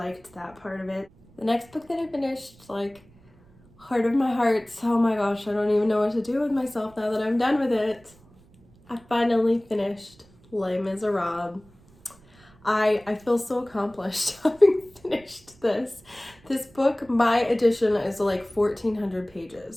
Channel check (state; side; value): noise; right; rumble, 28 dB below the sound